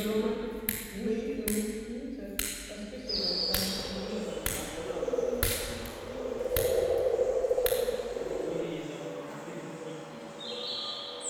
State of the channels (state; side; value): identical; both; correlation 1.00